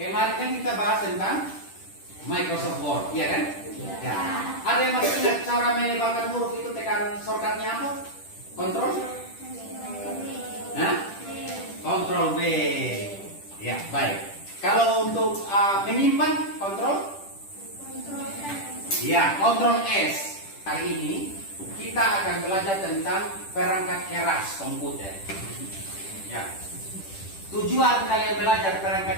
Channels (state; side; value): late; right; 10 ms